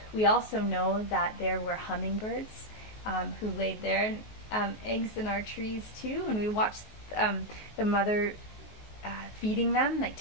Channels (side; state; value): right; late; 19 ms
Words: we also know that there were hummingbirds who laid their eggs in our trees too, and we watched the mother feeding them, like